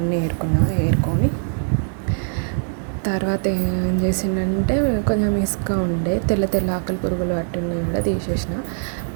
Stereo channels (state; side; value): silent; left; 63 dB below the other